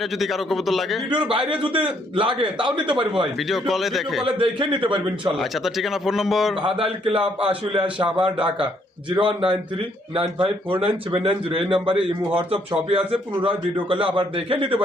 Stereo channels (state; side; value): normal; both; correlation 0.69